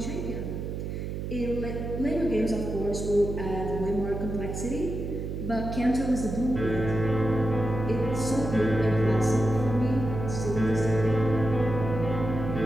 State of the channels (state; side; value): noise; right; hum, 5 dB below the sound